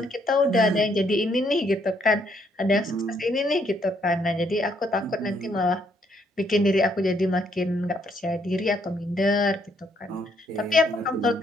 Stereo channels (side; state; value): both; normal; correlation 0.70